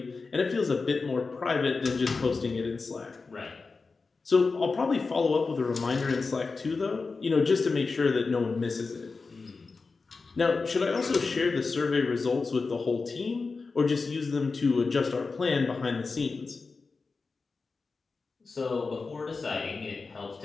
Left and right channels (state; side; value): quieter; right; 4.3 dB